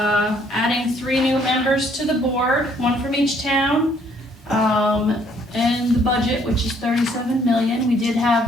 adding 3 new members to the board, 1 from each town, and the budget, which is $37 million. We did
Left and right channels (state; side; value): normal; both; correlation 0.64